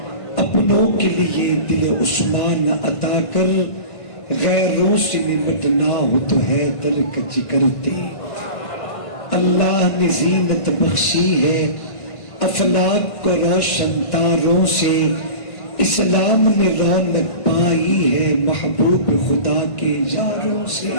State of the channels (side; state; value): right; late; 1.5 ms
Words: اپنوں کے لیے دل عثمان عطا کر، غیروں سے نمٹنا ہو تو حیدر کا جگر دے۔ اللہ نے زینت بخشی ہے افلاک کو روشن تاروں سے، اسلام نے رونق پائی ہے محبوب خدا کے یاروں سے،